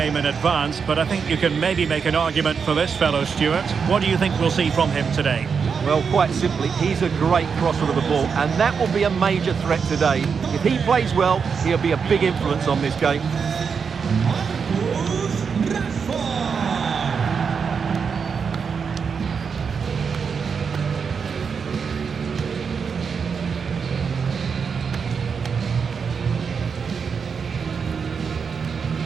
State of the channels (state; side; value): quieter; left; 6.0 dB